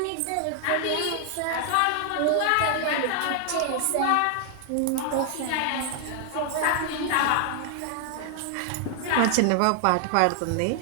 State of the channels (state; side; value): different; both; correlation 0.00